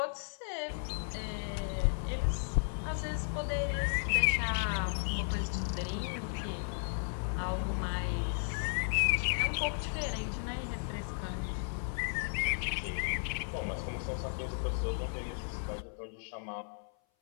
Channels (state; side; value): silent; right; 55 dB below the other